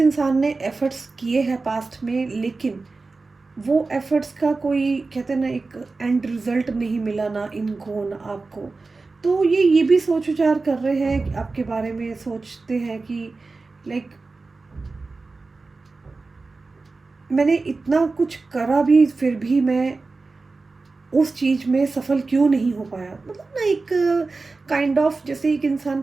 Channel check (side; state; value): left; quieter; 3.8 dB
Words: ने एफ़र्ट्स किए हैं पास्ट में, लेकिन वो एफ़र्ट्स का कोई, कहते हैं ना, एक एंड रिज़ल्ट नहीं मिला, ना इनको ना आपको. तो ये भी सोच विचार कर रहे हैं आपके बारे में, सोचते हैं कि लाइक मैंने इतना कुछ करा भी, फिर भी मैं उस चीज़ में सफल क्यों नहीं हो पाया. मतलब ना एक काइंड ऑफ, जैसे एक इंसान